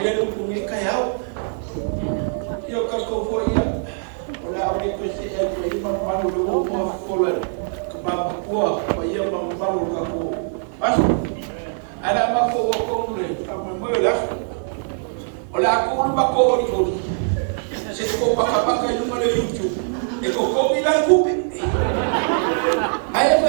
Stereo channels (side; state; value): left; silent; 55 dB below the other